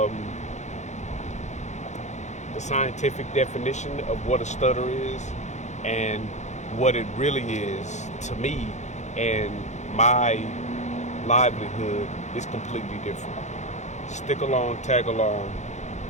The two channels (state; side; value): late; right; 0.34 ms